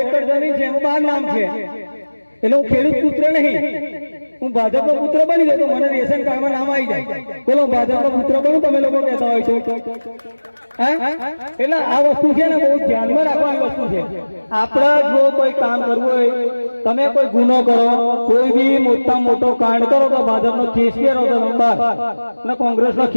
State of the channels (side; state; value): both; inverted; correlation -1.00